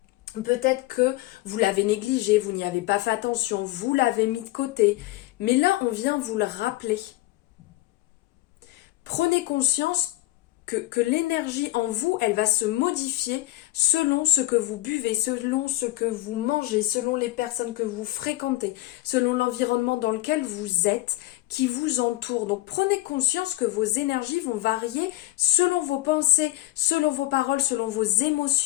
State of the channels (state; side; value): quieter; right; 17.7 dB